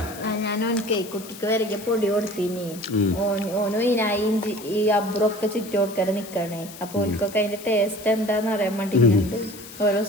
ഞാനോനക്ക് കുട്ടിക്ക് വരയ്ക്ക് പൊടി കൊടുത്തീനി. ഓനും ഇതിനായി ഈ അബ്രൊക്കെ ചുറ്റി കൊടുക്കാൻ നിക്കണേ. അപ്പൊ ഓൽക്കൊക്കെ അതിന്റെ ടേസ്റ്റ് എന്താന്ന് അറിയാൻ വേണ്ടിട്ട് ഓരോ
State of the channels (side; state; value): left; noise; hiss, 16 dB below the sound